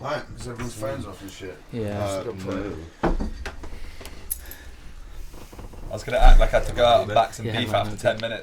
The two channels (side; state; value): both; identical; correlation 1.00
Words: Right, because everyone's phones off and shit. Yeah. I was gonna act like I had to go out and back some beef after 10